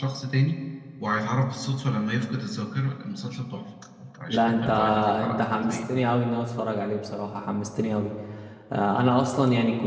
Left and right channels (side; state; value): both; identical; correlation 1.00